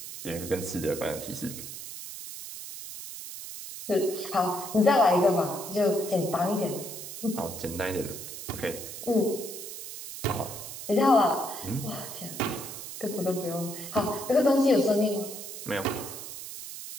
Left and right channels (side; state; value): right; noise; hiss, 10 dB below the sound